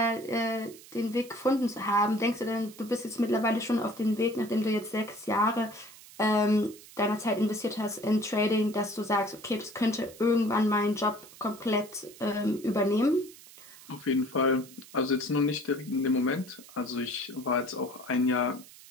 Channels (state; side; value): noise; right; hiss, 20 dB below the sound